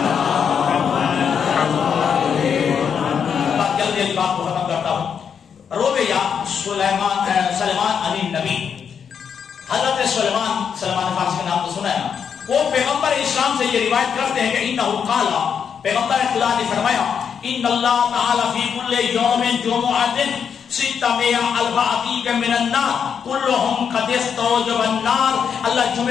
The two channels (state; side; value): quieter; right; 7.2 dB